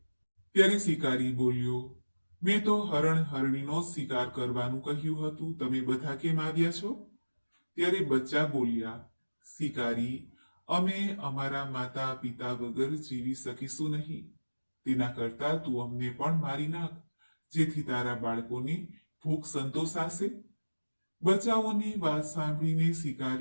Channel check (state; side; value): inverted; both; correlation -1.00